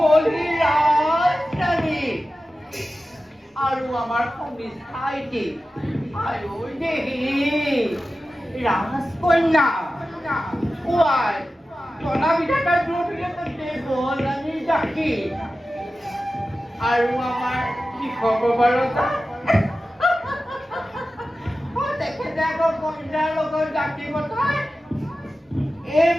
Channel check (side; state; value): both; normal; correlation 0.94